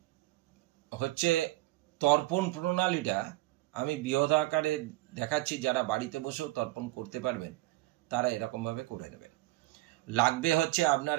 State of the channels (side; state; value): left; quieter; 18.9 dB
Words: হচ্ছে তর্পণ প্রণালীটা আমি বৃহৎ আকারে দেখাচ্ছি, যারা বাড়িতে বসেও তর্পণ করতে পারবেন তারা এরকমভাবে করে নেবেন। লাগবে হচ্ছে আপনার